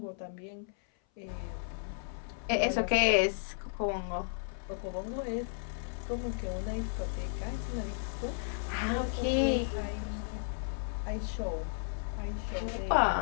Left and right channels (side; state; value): right; silent; 55 dB below the other